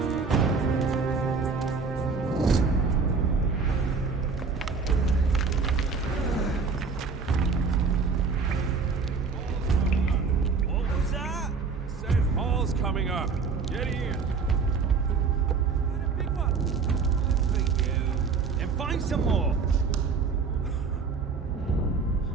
What was that? Said Hall's coming up. Get in. Got a big one. For you. Then find some more.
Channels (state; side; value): quieter; left; 5.0 dB